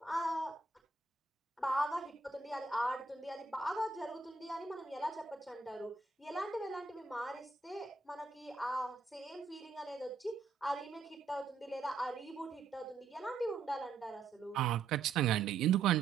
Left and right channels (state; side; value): quieter; left; 4.3 dB